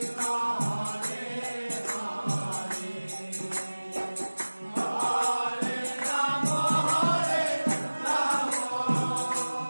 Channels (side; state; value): both; inverted; correlation -1.00